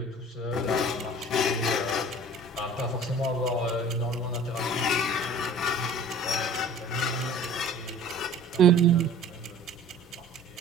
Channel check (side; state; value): both; normal; correlation 0.46